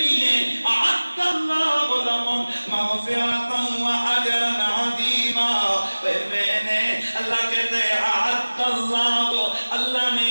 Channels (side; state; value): both; inverted; correlation -1.00